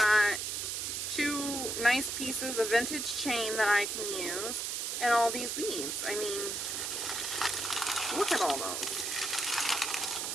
2 nice pieces of vintage chain that I can use, and all these beads. I mean, look at all those.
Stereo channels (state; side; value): noise; right; hiss, 2 dB below the sound